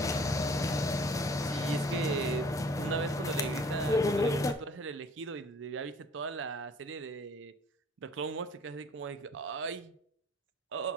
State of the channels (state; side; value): normal; both; correlation 0.53